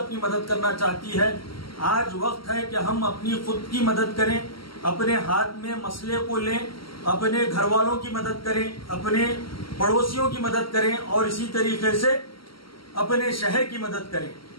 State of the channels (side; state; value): right; late; 0.74 ms